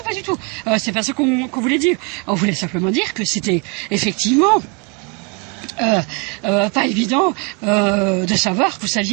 pas du tout. C'est pas ça qu'on voulait dire. On voulait simplement dire que c'était effectivement pas évident de savoir que vous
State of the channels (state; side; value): quieter; left; 33.1 dB